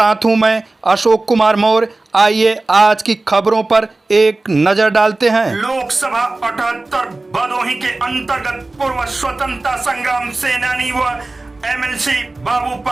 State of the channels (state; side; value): quieter; left; 3.1 dB